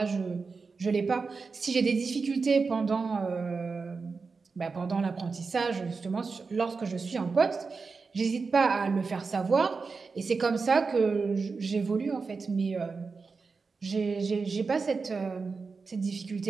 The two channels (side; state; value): left; quieter; 4.6 dB